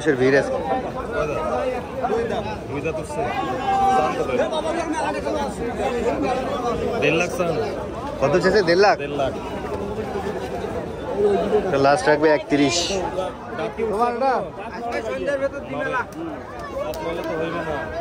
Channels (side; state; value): both; identical; correlation 1.00